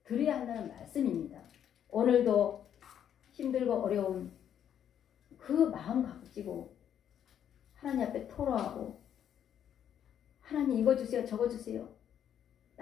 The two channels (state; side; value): quieter; right; 9.5 dB